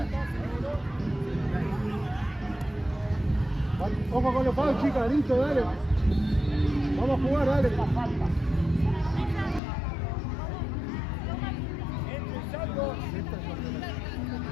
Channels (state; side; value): drops out; right; at 9.6 s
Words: Ojo con los palos, chicas, listo, dale. Vamos a jugar, dale. Entre y salgo.